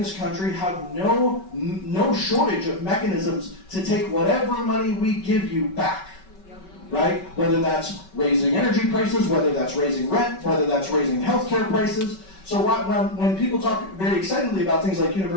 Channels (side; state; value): right; late; 5.3 ms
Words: country have no shortage of mechanisms to take whatever money we give you back. right? Whether that's raising energy prices, whether that's raising rent, whether that's raising healthcare prices. So when people talk very excitedly about things like